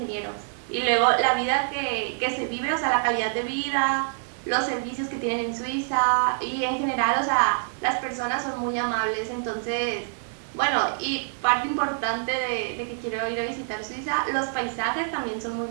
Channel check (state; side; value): silent; left; digital silence